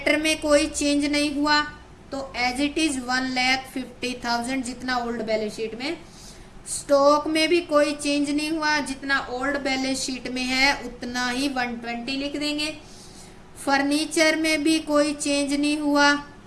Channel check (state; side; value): identical; both; correlation 1.00